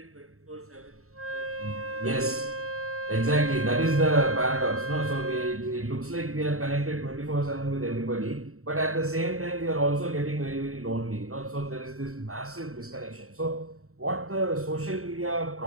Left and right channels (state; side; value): late; left; 0.63 ms